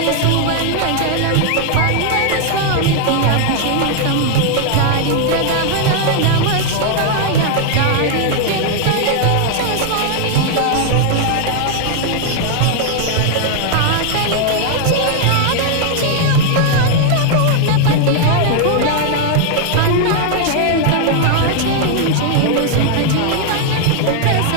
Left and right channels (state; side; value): different; both; correlation 0.00